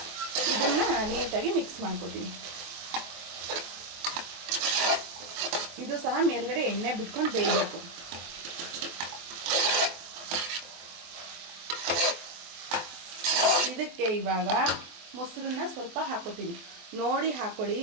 ಇದನ್ನು ನೀಟಾಗಿ ಮಿಕ್ಸ್ ಮಾಡ್ಕೊತೀನಿ. ಇದು ಸಹ ಮೇಲ್ಗಡೆ ಎಣ್ಣೆ ಬಿಟ್ಕೊಂಡು ಬೇಯಬೇಕು. ಇದಕ್ಕೆ ಇವಾಗ ಮೊಸರನ್ನ ಸ್ವಲ್ಪ ಹಾಕೋತೀನಿ. ನೋಡಿ ಹಾಕೊಳ್ಳಿ,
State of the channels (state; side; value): late; left; 23 ms